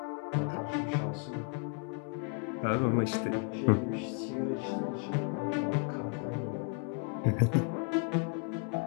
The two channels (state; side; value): quieter; right; 34.6 dB